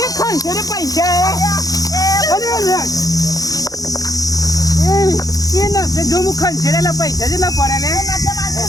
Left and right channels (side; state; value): right; late; 0.17 ms